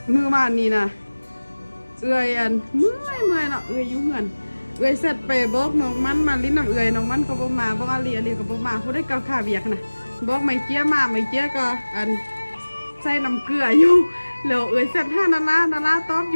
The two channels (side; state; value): both; inverted; correlation -1.00